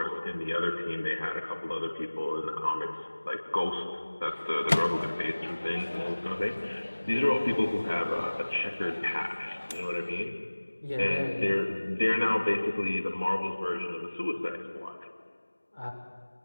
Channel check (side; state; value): both; inverted; correlation -1.00